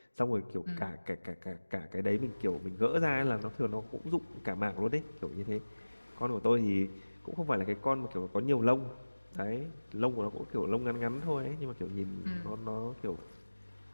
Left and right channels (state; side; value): inverted; both; correlation -1.00